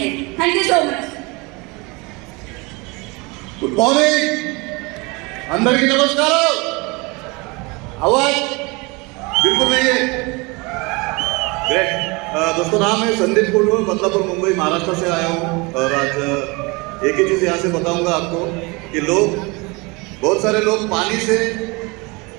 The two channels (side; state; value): left; quieter; 26.8 dB